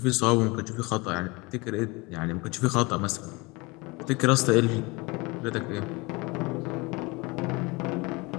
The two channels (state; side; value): quieter; right; 25.6 dB